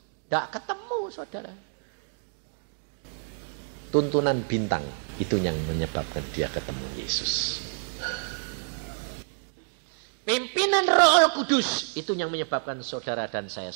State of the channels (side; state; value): left; silent; digital silence